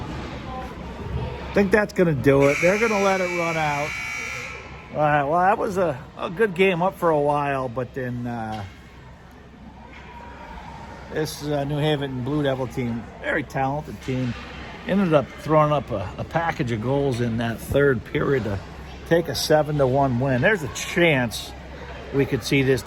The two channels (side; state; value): both; identical; correlation 1.00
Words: think that's gonna do it. They're gonna let it run out. All right, well, that was a good game up for a while, but then this New Haven Blue Devil team, very talented team, ended up throwing up a package of goals in that third period to take a 7-1 win. There's a chance we could see this